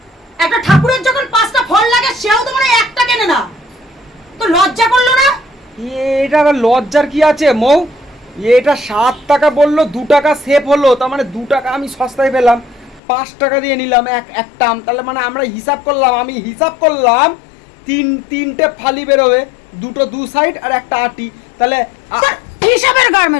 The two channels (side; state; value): right; drops out; at 13.0 s